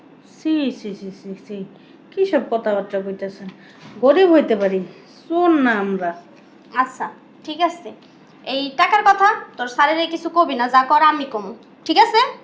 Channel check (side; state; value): both; identical; correlation 1.00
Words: সি সি সি সি সি, কী সব কথাবার্তা কইতেছেন? গরিব হইতে পারি, শোন না আমরা। আচ্ছা ঠিক আছে, এই টাকার কথা তোর স্যারেরে কিছু কবি না, যা কর আমি কম, ঠিক আছে?